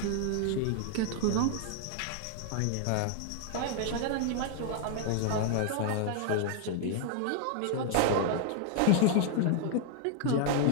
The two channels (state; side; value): different; both; correlation 0.00